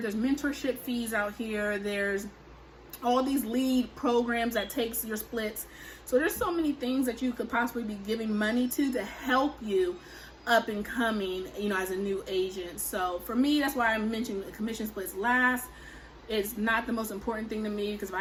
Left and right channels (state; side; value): identical; both; correlation 1.00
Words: mentorship fees out here, there's all these lead programs that takes your splits. So there's so many things that you could possibly be giving money to help you up and coming, as a new agent. So for me, that's why I mentioned the commission splits last. It's not the most important thing to me, because if